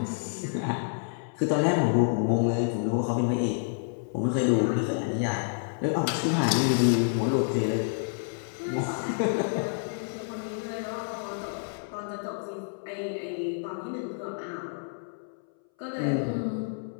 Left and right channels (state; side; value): silent; right; 59 dB below the other